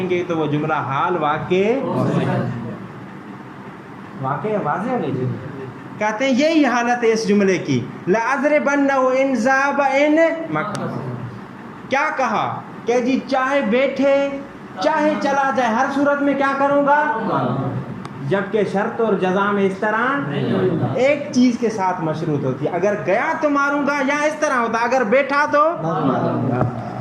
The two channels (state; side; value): identical; both; correlation 1.00